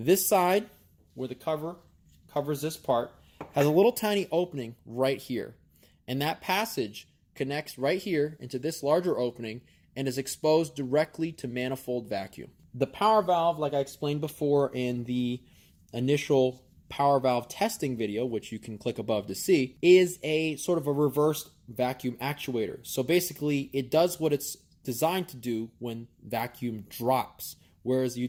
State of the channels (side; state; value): both; identical; correlation 1.00